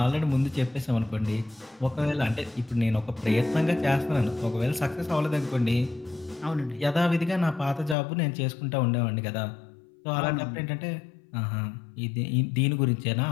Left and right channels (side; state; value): right; drops out; at 8.0 s